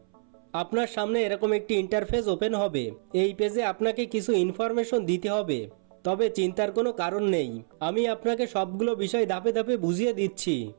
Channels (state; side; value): silent; left; 60 dB below the other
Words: আপনার সামনে এরকম একটি ইন্টারফেস ওপেন হবে। এই পেজে আপনাকে কিছু ইনফরমেশন দিতে হবে, তবে চিন্তার কোনো কারণ নেই, আমি আপনাকে সবগুলো বিষয় ধাপে ধাপে বুঝিয়ে দিচ্ছি।